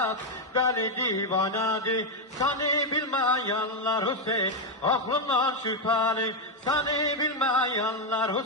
deli divanadı. Seni bilmeyenler Hüseyin aklından şüpheli. Seni bilmeyenler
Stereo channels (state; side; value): normal; both; correlation 0.03